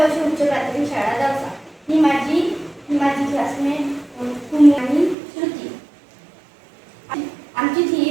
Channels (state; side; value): drops out; left; at 5.2 s